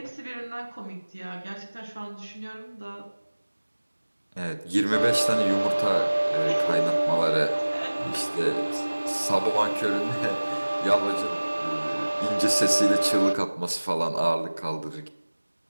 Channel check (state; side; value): inverted; both; correlation -1.00